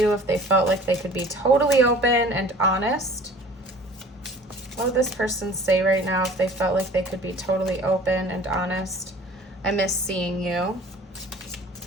if they felt like they could be totally open and honest. What would this person say right now if they felt like they could be totally open and honest? I miss seeing you.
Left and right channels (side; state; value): both; normal; correlation 0.47